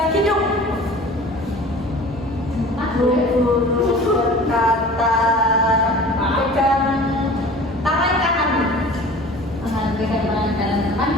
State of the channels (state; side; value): normal; both; correlation 0.42